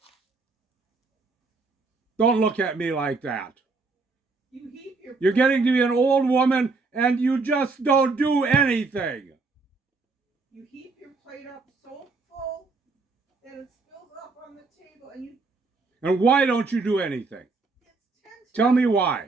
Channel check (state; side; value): quieter; left; 3.9 dB